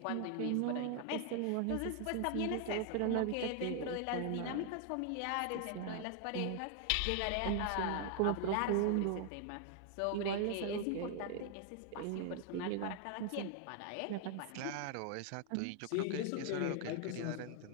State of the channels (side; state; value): both; different; correlation 0.00